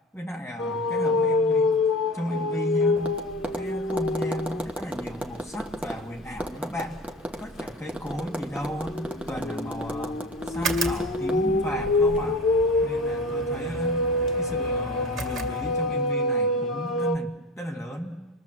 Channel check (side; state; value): both; normal; correlation 0.34